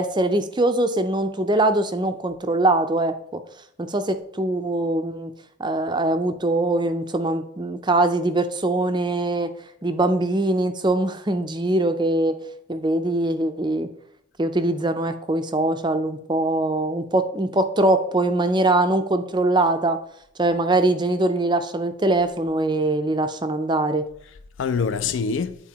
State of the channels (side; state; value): both; normal; correlation 0.50